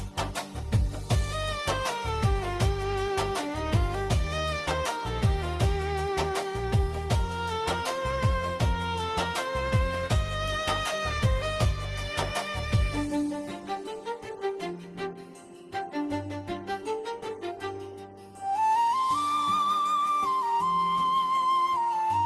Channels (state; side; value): identical; both; correlation 1.00